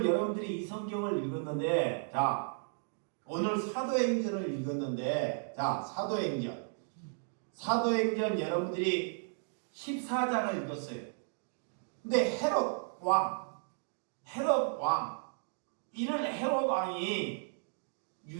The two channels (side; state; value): left; silent; digital silence